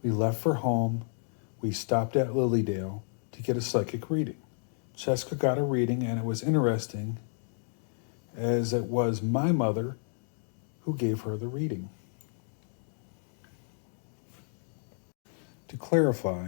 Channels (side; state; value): right; silent; digital silence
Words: We left for home. We stopped at Lilydale to get a psychic reading. Jessica got a reading, and it was interesting, as it was my mother who gave her the reading. To